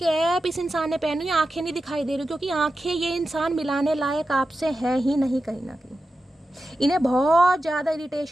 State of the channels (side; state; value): both; normal; correlation 0.91